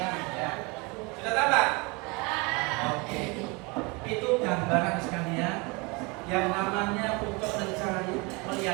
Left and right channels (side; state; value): left; quieter; 27.9 dB